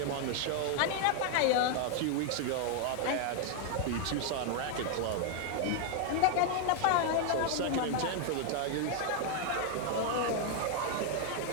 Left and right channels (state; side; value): different; both; correlation 0.00